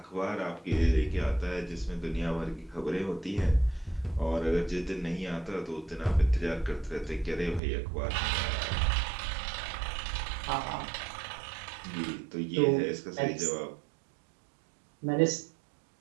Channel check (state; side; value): drops out; left; at 7.6 s